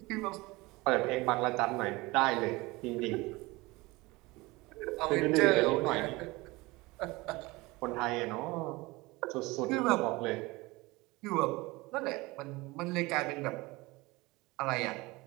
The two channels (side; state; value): left; quieter; 22.4 dB